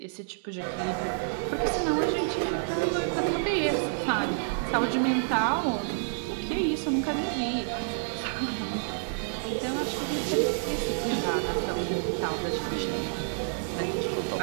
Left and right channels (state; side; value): silent; left; digital silence